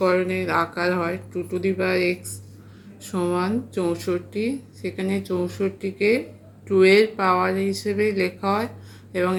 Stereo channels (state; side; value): identical; both; correlation 1.00